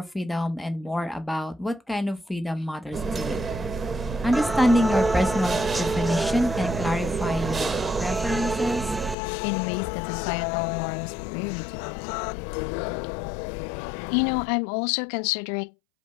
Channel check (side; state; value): right; drops out; at 9.2 s